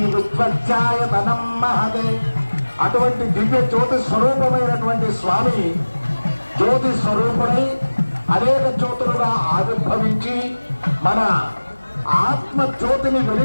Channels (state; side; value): inverted; both; correlation -1.00